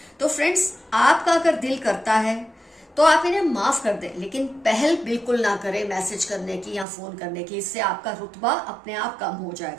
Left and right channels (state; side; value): drops out; left; at 6.9 s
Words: तो फ्रेंड्स, आपका अगर दिल करता है तो आप इन्हें माफ कर दें, लेकिन पहल बिल्कुल ना करें मैसेज करने की या फोन करने की। इससे आपका रुतबा अपने आप कम हो